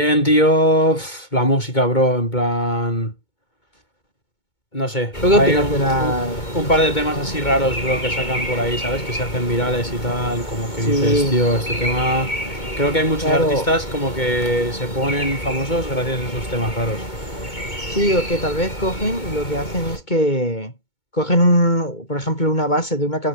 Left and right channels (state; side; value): late; right; 2.2 ms